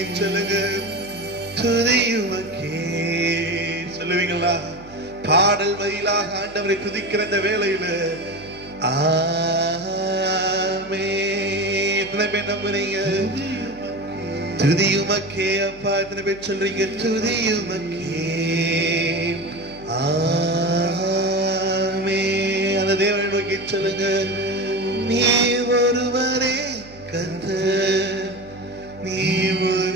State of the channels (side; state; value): right; noise; hum, 22 dB below the sound